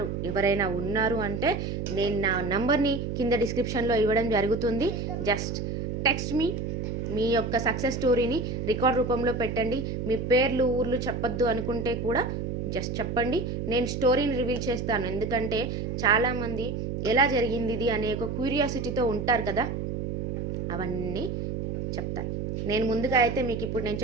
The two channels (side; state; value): right; noise; hum, 3 dB below the sound